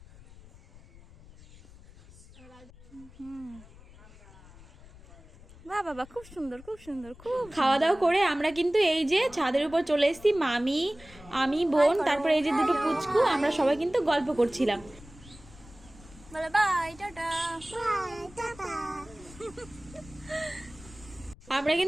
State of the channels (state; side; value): noise; left; rumble, 21 dB below the sound